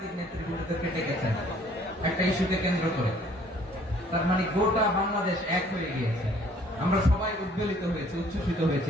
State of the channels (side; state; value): both; normal; correlation 0.58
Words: নেতৃবৃন্দদেরকে ডেকেছেন একটা ইস্যুকে কেন্দ্র করে। তার মানে গোটা বাংলাদেশ এক হয়ে গিয়েছে। আমরা সবাই উদ্বেলিত হয়েছে, উচ্ছ্বসিত